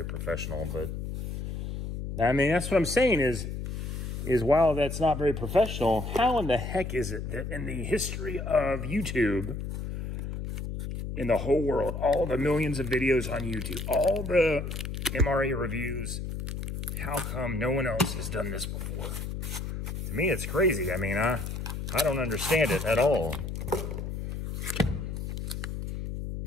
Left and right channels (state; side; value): noise; left; hum, 5 dB below the sound